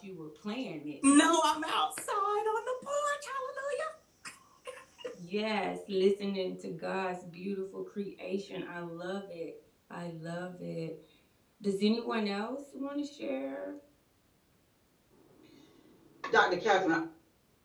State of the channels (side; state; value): both; identical; correlation 1.00